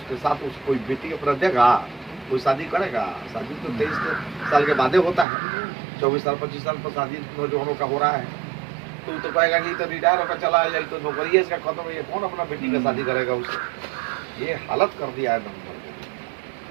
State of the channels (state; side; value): drops out; left; at 5.2 s